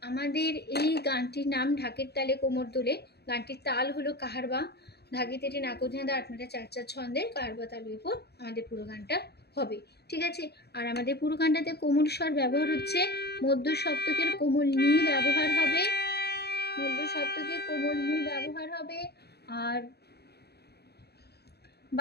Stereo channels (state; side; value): late; right; 0.47 ms